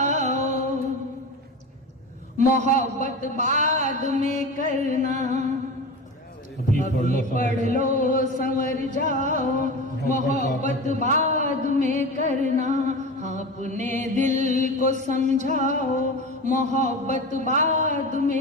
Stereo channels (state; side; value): normal; both; correlation 0.28